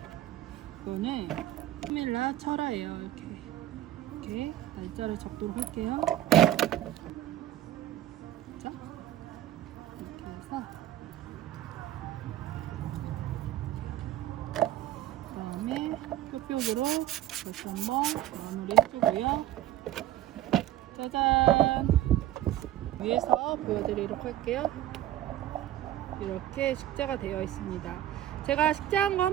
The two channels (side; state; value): left; quieter; 12.9 dB